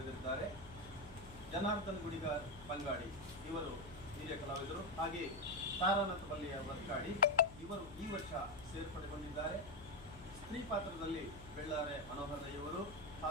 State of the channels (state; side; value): noise; left; hum, 16 dB below the sound